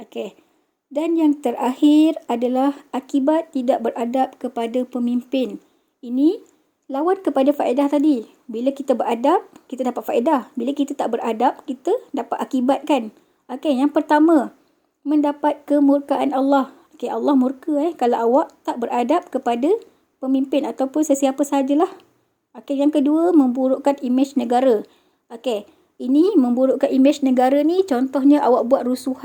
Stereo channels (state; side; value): identical; both; correlation 1.00